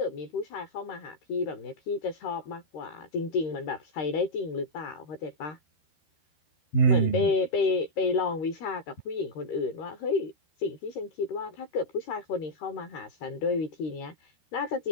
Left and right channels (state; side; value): late; right; 13 ms